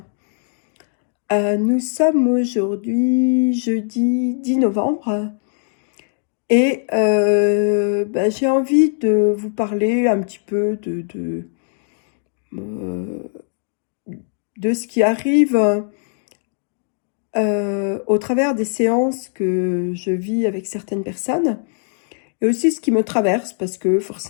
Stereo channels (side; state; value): right; silent; digital silence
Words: Nous sommes aujourd'hui jeudi 10 novembre et j'ai envie de vous parler un petit peu euh, de ce qui arrive au travers des séances que je vis avec certaines personnes et aussi ce qui me traverse parce que